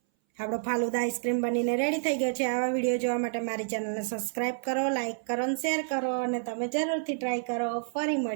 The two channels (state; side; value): silent; left; 58 dB below the other